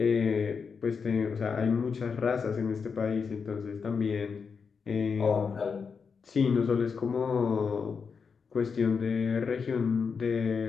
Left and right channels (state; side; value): quieter; right; 5.7 dB